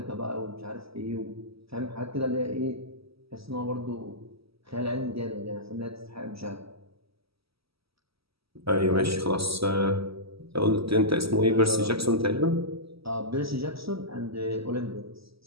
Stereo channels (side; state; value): left; late; 0.76 ms